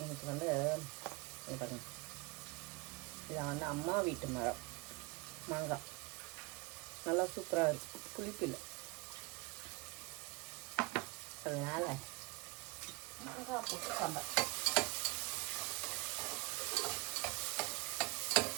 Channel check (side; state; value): left; quieter; 25.2 dB